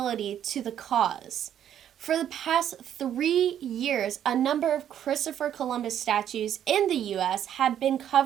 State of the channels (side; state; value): left; quieter; 10.2 dB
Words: to the cause. For the past 3 years, a number of Christopher Columbus statues in the U.S. have been